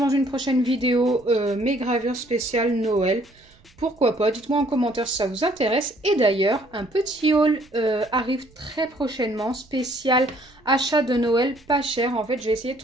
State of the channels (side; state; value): right; noise; rumble, 30 dB below the sound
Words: une prochaine vidéo mes gravures spéciales Noël. Pourquoi pas, dites-moi en commentaire si ça vous intéresse. Et d'ailleurs, un petit haul arrive très prochainement, spécial achat de Noël pas cher. En fait, j'ai essayé de